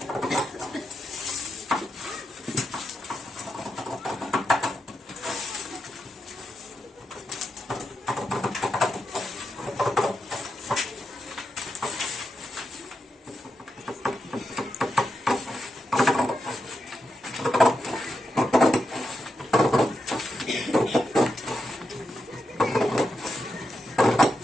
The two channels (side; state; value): both; normal; correlation 0.86